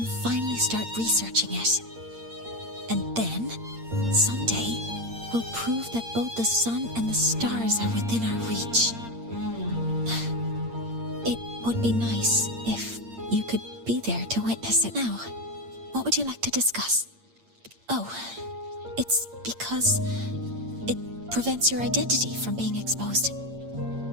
finally start researching it. And then, someday, we'll prove that both the sun and the stars are within our reach. It would be nice if you could be there to witness it. Now, what would you like to discuss? Oh, it's because it prevents your identity from being exposed.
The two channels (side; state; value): left; late; 8.7 ms